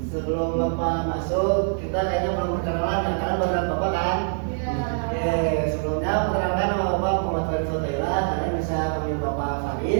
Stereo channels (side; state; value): left; silent; digital silence